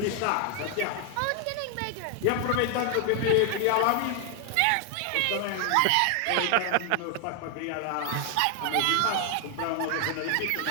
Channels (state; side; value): different; both; correlation 0.00